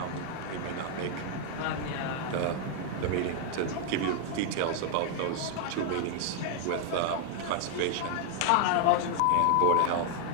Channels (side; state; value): both; different; correlation 0.00